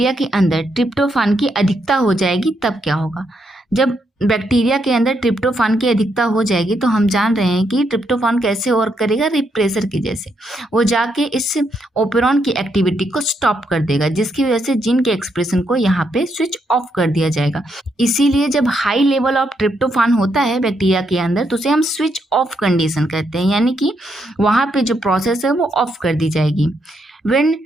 के अंदर ट्रिप्टोफान की अधिकता हो जाएगी तब क्या होगा, जब बैक्टीरिया के अंदर ट्रिप्टोफान की अधिकता हो जाएगी तो हम जान रहे हैं कि ट्रिप्टोफान कैसे वर्क करेगा, रिप्रेसर की जैसे वो जाके इस ओपेरॉन की एक्टिविटी को स्टॉप कर देगा, जिसकी वजह से जीन के एक्सप्रेशन को यहाँ पे स्विच ऑफ कर दिया जाएगा। इसीलिए जब हाई लेवल ऑफ ट्रिप्टोफान होता है बैक्टीरिया के अंदर तो उसे हम स्विच ऑफ कंडीशन कहते हैं, यानी कि वहाँ पे जो प्रोसेस है वो ऑफ कर दी जाएगी। When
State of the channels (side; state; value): both; normal; correlation 0.78